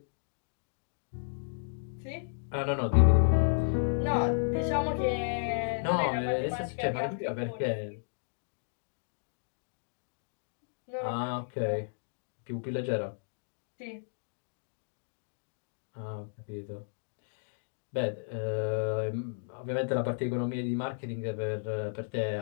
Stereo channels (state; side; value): silent; right; digital silence